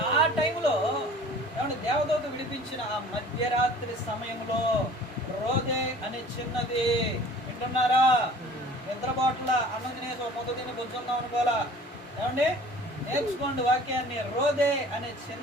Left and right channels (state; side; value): normal; both; correlation 0.47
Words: ఆ టైంలో ఏమంటే దేవదూత విడిపించిన ఆ మధ్యరాత్రి సమయంలో రోదే అనే చిన్నది, వింటున్నారా? నిద్రబాట్ల అన్నం తినేసి ఒక ముద్ద తిని బుజ్జుందాం అనుకోవాలా. ఏమండి నేర్చుకోండి వాక్యాన్ని. రోదే అనే